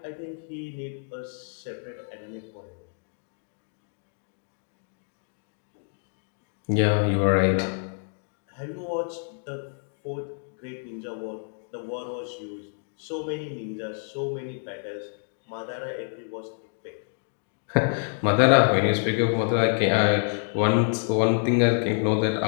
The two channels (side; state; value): right; silent; 60 dB below the other